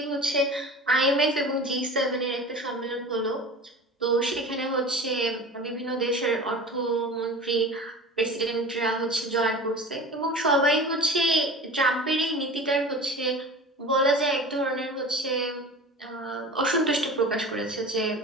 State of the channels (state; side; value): normal; both; correlation 0.36